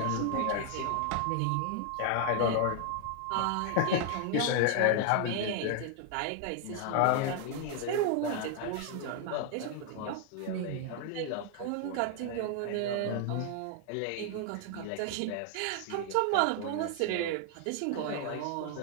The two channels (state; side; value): different; both; correlation 0.00